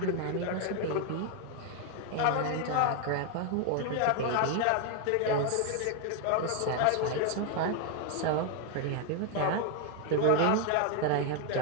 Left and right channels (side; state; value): both; different; correlation 0.01